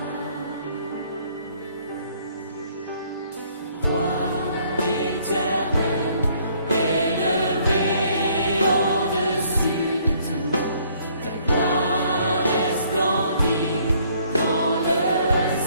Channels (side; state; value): both; inverted; correlation -0.63